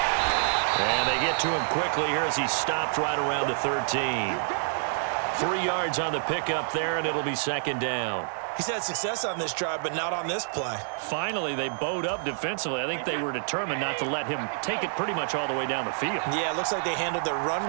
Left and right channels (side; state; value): left; silent; 60 dB below the other